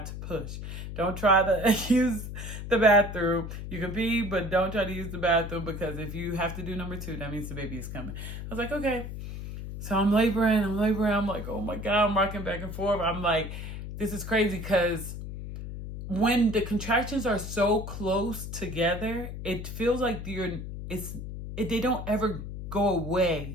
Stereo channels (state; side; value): noise; left; hum, 8 dB below the sound